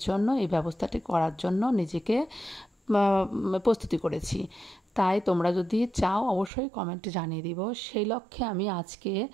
জন্য এই ব্যবস্থাটি করার জন্য নিজেকে প্রস্তুতি করেছি। তাই তোমরা যদি চাও অবশ্যই কমেন্টে জানিয়ে দিব। সেই লক্ষ্যে আমি আজকে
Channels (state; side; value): drops out; left; at 6.5 s